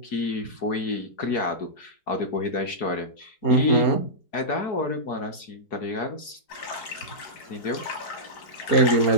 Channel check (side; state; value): right; late; 4.7 ms